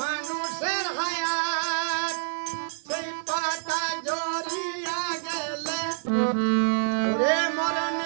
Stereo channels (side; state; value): left; silent; digital silence